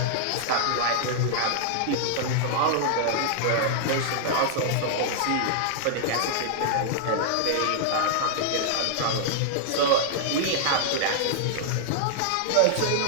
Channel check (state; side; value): different; both; correlation -0.01